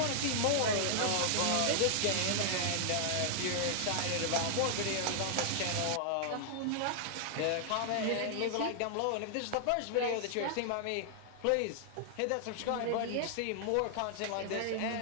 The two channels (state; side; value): different; both; correlation -0.01